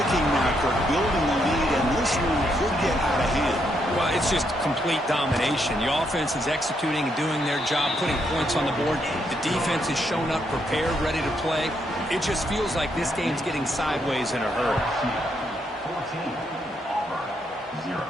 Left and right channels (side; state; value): both; normal; correlation 0.77